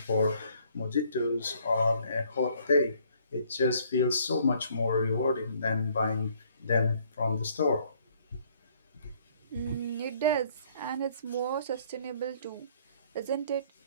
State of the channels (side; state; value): both; inverted; correlation -0.63